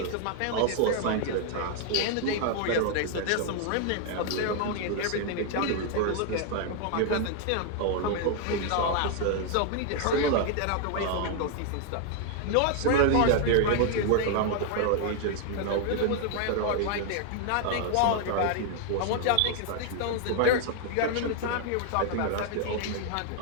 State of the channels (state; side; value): different; both; correlation 0.00